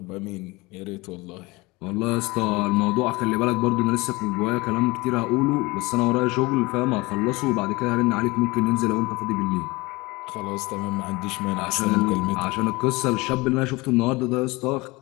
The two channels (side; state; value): right; quieter; 23.3 dB